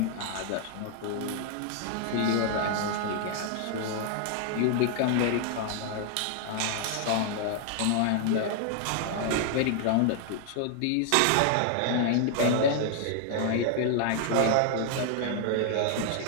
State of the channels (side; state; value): both; different; correlation 0.00